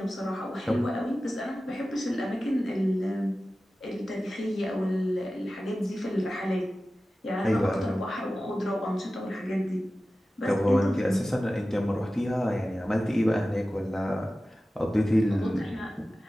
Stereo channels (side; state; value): both; normal; correlation 0.95